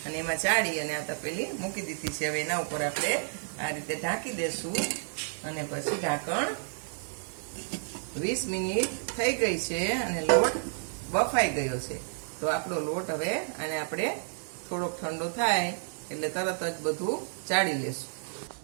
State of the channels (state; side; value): silent; left; digital silence